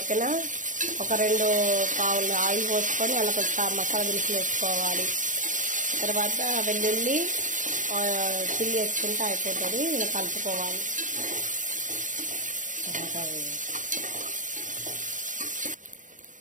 ఒక 2 పావులు ఆయిల్ పోసుకొని అలా కొంచెం మసాలా దినుసులు వేసుకోవాలి. తర్వాత వెల్లుల్లి చిల్లి వేసుకుంటే అయిపోతుంది. ఇలా కలుపుకోవాలి.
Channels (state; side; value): late; left; 0.37 ms